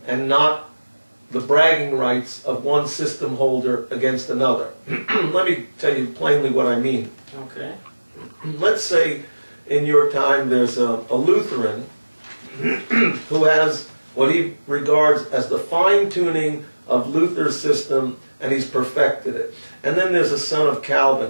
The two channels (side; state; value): both; inverted; correlation -1.00